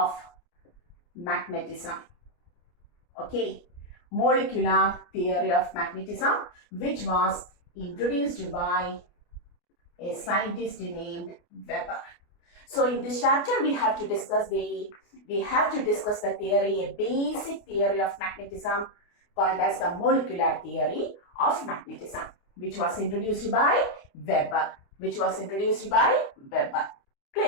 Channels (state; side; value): late; right; 29 ms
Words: magnetism. Okay, molecular theory of magnetism, which was introduced by a scientist named Weber. So in this chapter we have to discuss the theory, a basic theory of magnetism called as the molecular theory of magnetism, which was introduced by Weber.